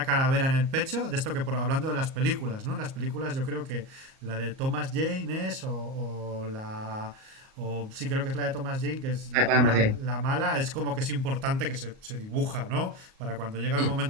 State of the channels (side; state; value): left; late; 38 ms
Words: calavera en el pecho. De esto que hablando de las películas, ¿no? Las películas yo creo que la de Thomas Jane es, o la... O sí, creo que es la de Thomas Jane, que es la mala, es como que es importante que se dibuja, ¿no? Para cuando llega el